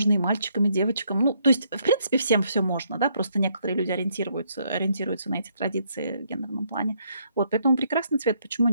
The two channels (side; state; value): both; inverted; correlation -0.72